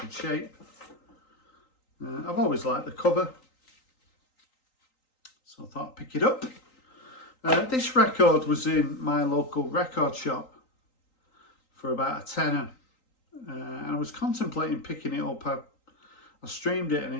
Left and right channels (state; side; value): late; right; 3.8 ms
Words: shape. I've always liked the cover, so I thought I'd pick it up. This record was in my local record shop for about a tenner, and I was contemplating picking it up. I streamed it and